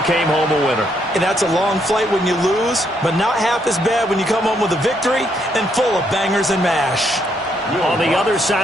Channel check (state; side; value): normal; both; correlation 0.74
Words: came home a winner. And that's a long flight when you lose, but not half as bad when you come home with a victory and full of bangers and mash. On the other